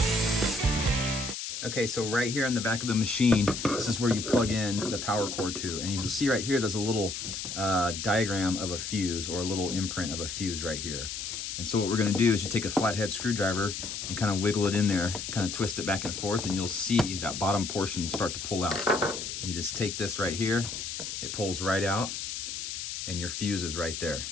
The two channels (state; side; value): noise; left; hiss, 5 dB below the sound